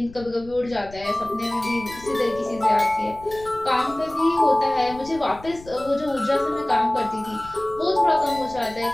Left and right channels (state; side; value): noise; left; rumble, 19 dB below the sound